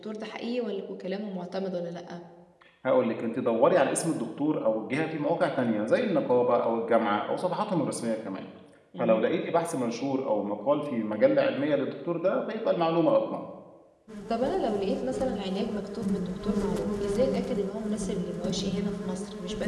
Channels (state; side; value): identical; both; correlation 1.00